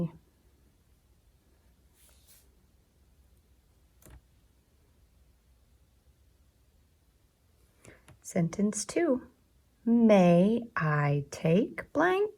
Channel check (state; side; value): identical; both; correlation 1.00